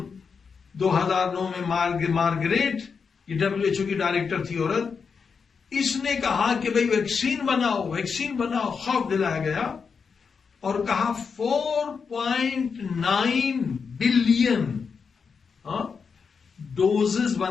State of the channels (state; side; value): quieter; right; 5.7 dB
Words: 2009 میں مارگریٹ، یہ WHO کی ڈائریکٹر تھی عورت، اس نے کہا کہ بھئی ویکسین بناؤ، خوف دلایا گیا اور کہا 4.9 بلین ڈوزز